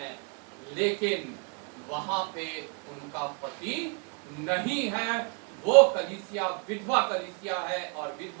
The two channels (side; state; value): left; quieter; 35.0 dB